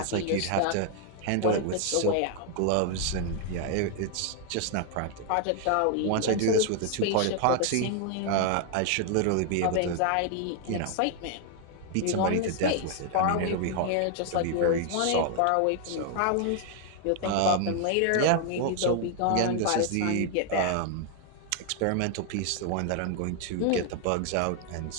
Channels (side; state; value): both; different; correlation 0.00